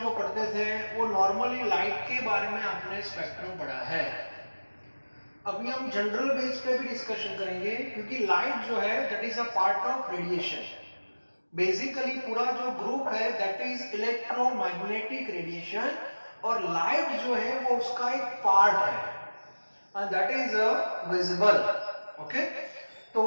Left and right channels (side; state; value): both; inverted; correlation -1.00